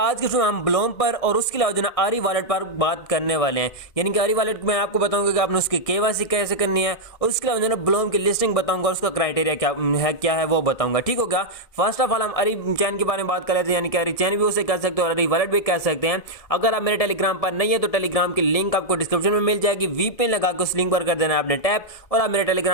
के शो में हम ब्लोम पर और उसके अलावा जो ना आरी वॉलेट पर बात करने वाले हैं। यानी कि आरी वॉलेट में आपको बताऊंगा कि आपने उसकी केवाईसी कैसे करनी है और उसके अलावा जो ना ब्लोम की लिस्टिंग बताऊंगा, उसका क्राइटेरिया क्या है वो बताऊंगा। ठीक हो गया। फर्स्ट ऑफ ऑल हम आरी चैन के बारे में बात कर लेते हैं। यानी कि आरी चैन भी उसे कह सकते हो और आरी वॉलेट भी कह सकते हैं। अगर आप मेरे टेलीग्राम पर नहीं है तो टेलीग्राम की लिंक आपको डिस्क्रिप्शन में मिल जाएगी। वीपीएन लगा के उस लिंक पर कर देना है आपने टैप और आप मेरे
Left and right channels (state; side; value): late; right; 1.7 ms